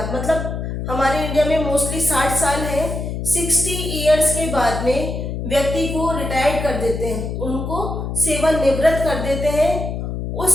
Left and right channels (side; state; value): left; noise; hum, 4 dB below the sound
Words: मतलब हमारे इंडिया में मोस्टली 60 साल है, 60 इयर्स के बाद में व्यक्ति को रिटायर्ड कर देते हैं, उनको सेवानिवृत्त कर देते हैं।